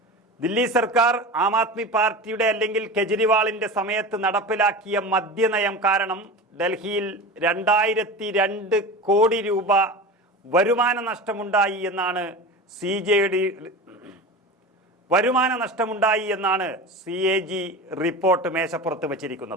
ദില്ലി സർക്കാർ ആം ആദ്മി പാർട്ടിയുടെ അല്ലെങ്കിൽ കെജ്രിവാളിന്റെ സമയത്ത് നടപ്പിലാക്കിയ മദ്യനയം കാരണം ഡൽഹിയിൽ 2002 കോടി രൂപ വരുമാന നഷ്ടമുണ്ടായി എന്നാണ് CAG റിപ്പോർട്ട് മേശപ്പുറത്ത്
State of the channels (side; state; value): both; normal; correlation 0.30